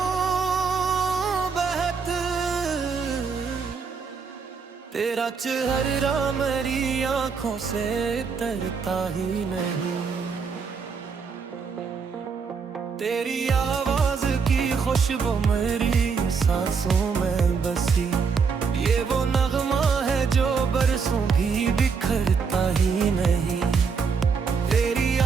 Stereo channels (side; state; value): left; quieter; 5.5 dB